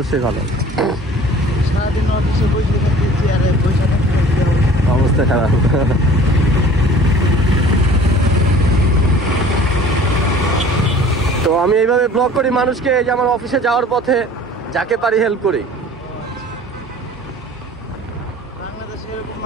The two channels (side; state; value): both; normal; correlation 0.47